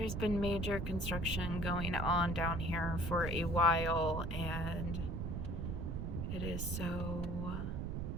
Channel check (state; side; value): noise; right; rumble, 2 dB below the sound